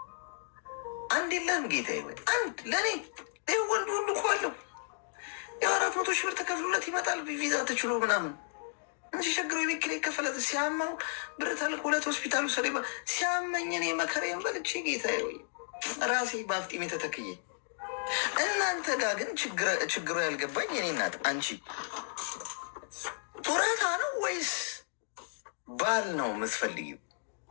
አንድ የለም ጌታዬ፣ ወይ አንድ ለእኔ ይህ ወንድ ሁሉ እኮ አለው። የ400 ሺህ ብር ተከፍሎለት ይመጣል ቪዛ ተችሎ ምናምን እንጂ ቸግሮ የቤት ኪራይ ከፈለት ሲያማው ብር ተልኮለት ሆስፒታሉ ሰ ሲያመኝ እኔ መከራዬን በልቼ ጌታዬ ወይ ራሴ በአፍጢሜ ተተክዬ። እናንተ ጋር ግን ችግሩ ያልገባኝ የኔ እናት፣ አንቺ ጡረታ ነው ወይስ ባል ነው የምትፈልጊው?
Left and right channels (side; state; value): right; silent; digital silence